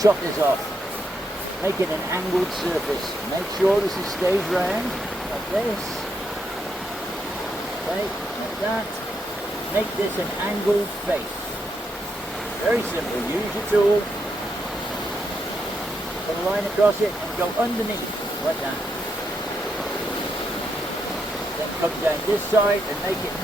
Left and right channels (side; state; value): both; normal; correlation 0.80